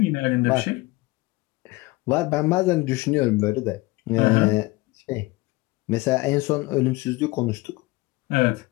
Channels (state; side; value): quieter; right; 21.7 dB